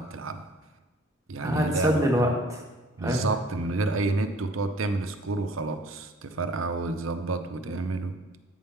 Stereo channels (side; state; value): both; normal; correlation 0.54